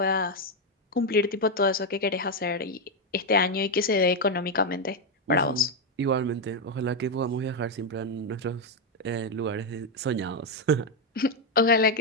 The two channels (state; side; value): normal; both; correlation 0.04